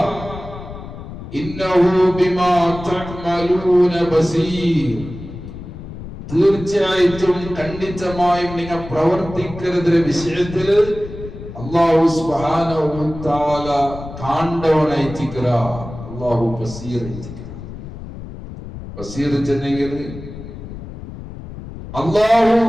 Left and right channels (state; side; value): noise; left; rumble, 12 dB below the sound